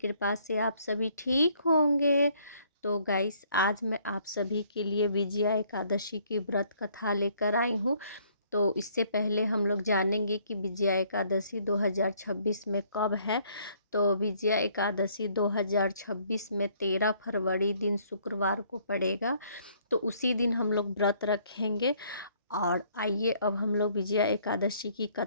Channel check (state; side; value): inverted; both; correlation -0.64